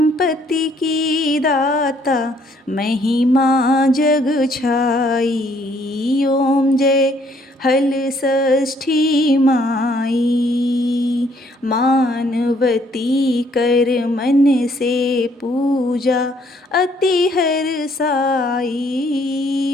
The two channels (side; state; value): both; normal; correlation 0.65